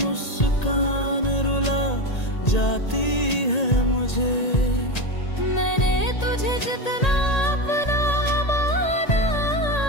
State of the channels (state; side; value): late; right; 1.8 ms